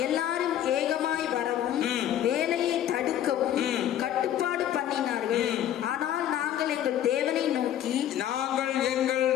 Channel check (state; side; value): quieter; right; 11.2 dB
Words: எல்லாரும் ஏகமாய் வரவும் வேலையை தடுக்கவும் கட்டுப்பாடு பண்ணினார்கள். ஆனால் நாங்கள் எங்கள் தேவனை